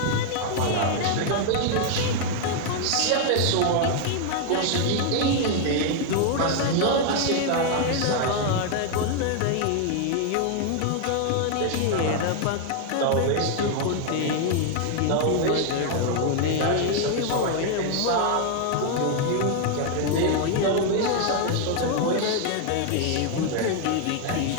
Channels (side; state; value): both; different; correlation 0.00